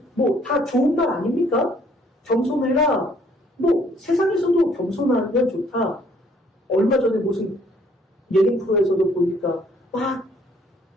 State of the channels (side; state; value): both; normal; correlation 0.62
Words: 다 좋은 말 아닙니까? 겸손해라. 세상에서도 겸손하면 좋다. 얼마 전에 무슨 예능 프로에서도 보니까 막